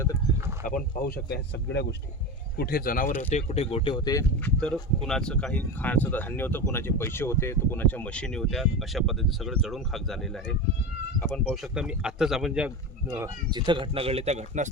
तर आपण पाहू शकता ह्या सगळ्या गोष्टी, कुठे जनावर होते, कुठे गोटे होते, तर कुणाचं काही खाण्याचं धान्य होतं, कुणाचे पैसे होते, तर कुणाच्या मशिनी होत्या. अशा पद्धतीने सगळं जळून खाक झालेलं आहे. आपण पाहू शकता, मी आत्ताच आपण जिथं घटना घडली त्या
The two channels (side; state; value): both; normal; correlation 0.23